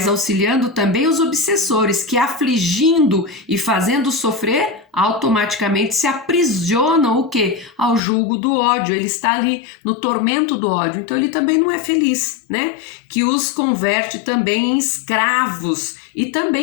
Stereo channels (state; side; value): drops out; right; at 8.0 s